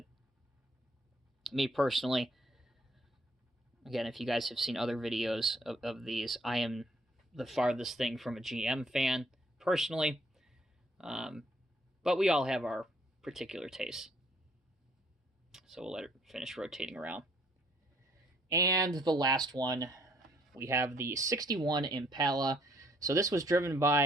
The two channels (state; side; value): normal; both; correlation 0.65